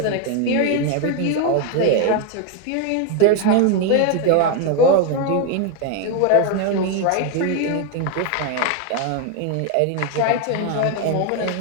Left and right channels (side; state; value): both; different; correlation 0.01